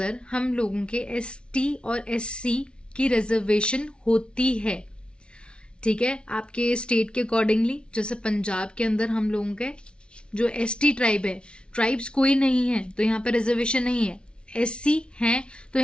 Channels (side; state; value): right; late; 0.057 ms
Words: हम लोगों के ST और SC की रिजर्वेशन होती है, ठीक है, आपके स्टेट के अकॉर्डिंगली। जैसे पंजाब के अंदर हम लोगों के जो ST ट्राइब है, ट्राइब्स कोई नहीं है तो यहाँ पे रिजर्वेशन नहीं है, SC हैं तो